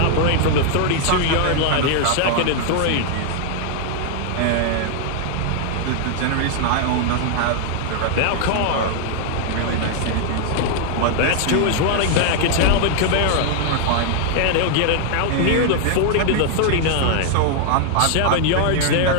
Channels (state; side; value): different; both; correlation 0.00